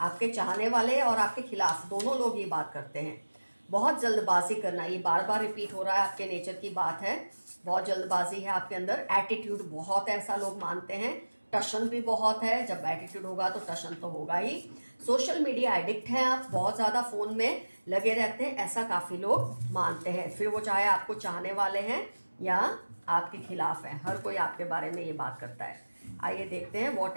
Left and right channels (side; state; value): both; inverted; correlation -1.00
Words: आपके चाहने वाले और आपके खिलाफ दोनों लोग ये बात करते हैं। बहुत जल्दबाजी करना, ये बार बार रिपीट हो रहा है, आपके नेचर की बात है। बहुत जल्दबाजी है आपके अंदर, एटीट्यूड बहुत है, ऐसा लोग मानते हैं। टशन भी बहुत है, जब एटीट्यूड होगा तो टशन तो होगा ही। सोशल मीडिया एडिक्ट हैं आप, बहुत ज़्यादा फ़ोन में लगे रहते हैं, ऐसा काफ़ी लोग मानते हैं। फिर वो चाहे आपको चाहने वाले हैं या आपके खिलाफ हैं, हर कोई आपके बारे में ये बात करता है। आइए देखते हैं what